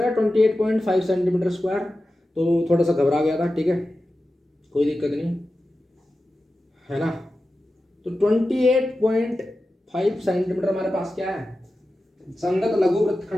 है 28.5 सेंटीमीटर स्क्वायर। तो थोड़ा सा घबरा गया था, ठीक है, कोई दिक्कत नहीं, है ना। तो 28.5 सेंटीमीटर हमारे पास क्या है, संगत लघु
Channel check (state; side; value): normal; both; correlation 0.93